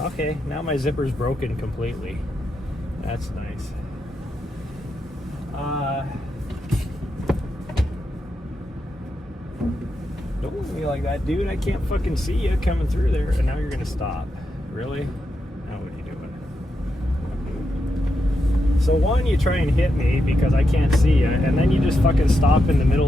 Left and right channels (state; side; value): normal; both; correlation 0.85